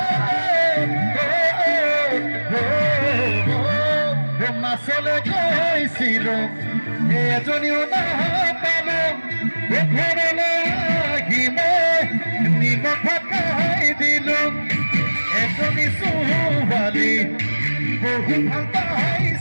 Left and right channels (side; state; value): both; inverted; correlation -1.00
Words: মাছলৈ গৈছিলো এজনীও নাপালো ঘৰলৈ আহি মই নিমখ খাই দিলো এজনী ছোৱালী বহু ভাল